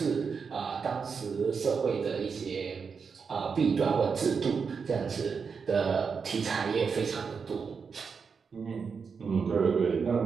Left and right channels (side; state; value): left; quieter; 5.7 dB